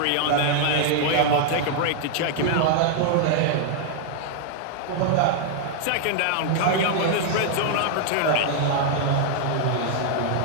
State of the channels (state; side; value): different; both; correlation -0.01